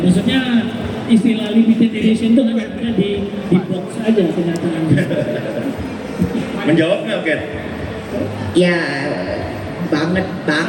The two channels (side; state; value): both; identical; correlation 1.00